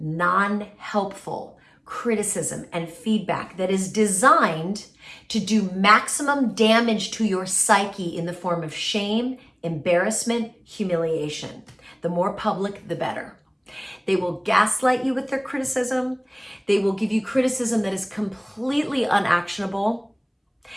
criticism and feedback that is designed to do maximum damage to your psyche in the form of shame, embarrassment, humiliation. The more public, the better. They will gaslight you with their criticism. They will give you criticism that is completely unactionable.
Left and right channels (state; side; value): identical; both; correlation 1.00